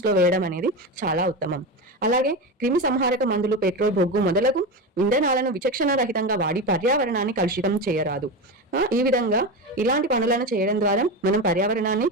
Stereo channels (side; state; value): both; normal; correlation 0.20